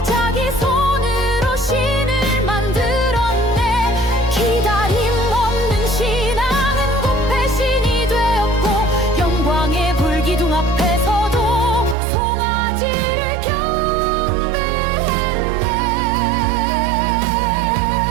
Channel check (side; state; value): left; drops out; at 12.0 s